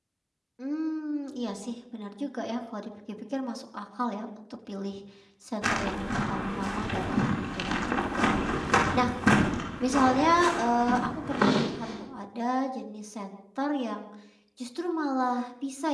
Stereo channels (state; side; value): identical; both; correlation 1.00